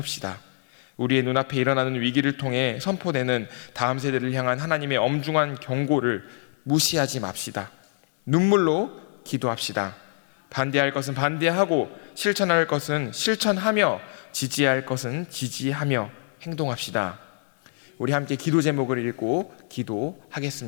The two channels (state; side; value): silent; right; digital silence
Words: 우리의 눈앞에 일어나는 위기를 통해 선포되는 다음 세대를 향한 하나님의 엄중한 경고를 무시하지 맙시다. 눈물로 기도합시다. 반대할 것은 반대하고 실천할 것은 실천하며 지지할 것은 지지하며 행동합시다. 우리 함께 기도 제목을 읽고